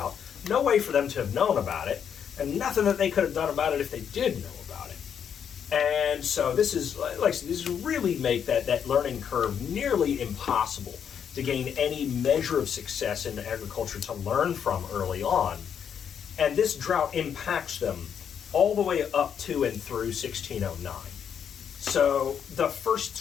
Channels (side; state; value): right; quieter; 8.0 dB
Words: No way for them to have known about it, and nothing that they could have done about it if they did know about it. And so this is, like I said, this really make that learning curve nearly impossible to gain any measure of success in agriculture to learn from early on. And this drought impacts them all the way up to and through 1609. So the first